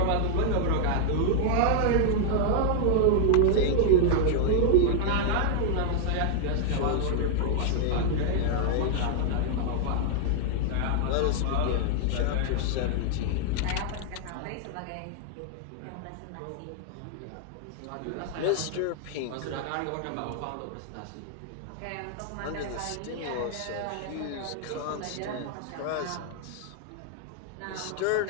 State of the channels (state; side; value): different; both; correlation 0.00